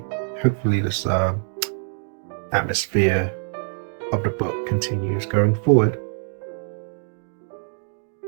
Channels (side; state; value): left; silent; 63 dB below the other